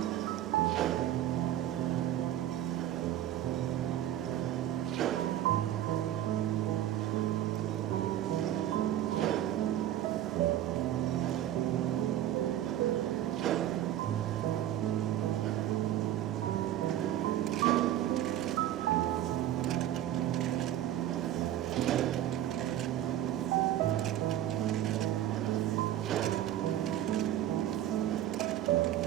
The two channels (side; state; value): left; quieter; 12.4 dB